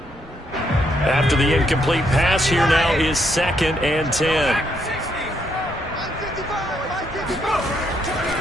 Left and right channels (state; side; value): normal; both; correlation 0.75